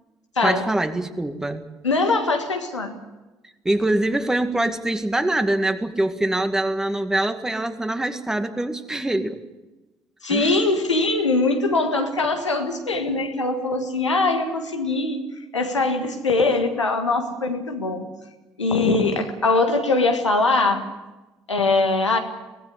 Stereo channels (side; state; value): both; normal; correlation 0.51